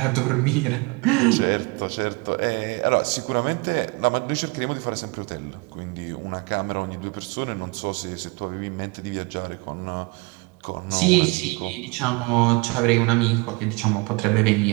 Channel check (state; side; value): quieter; left; 28.0 dB